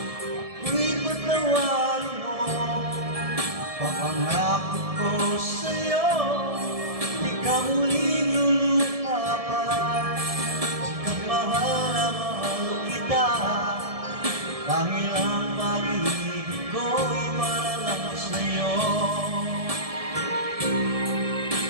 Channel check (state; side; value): late; left; 1.7 ms